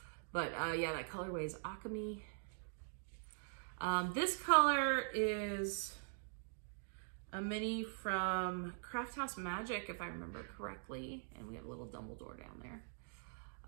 But yeah, that colorway is Akami. This color is a mini from Craft House Magic, if I remember correctly. And we have a little Dumbledore down there.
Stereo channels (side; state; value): left; silent; digital silence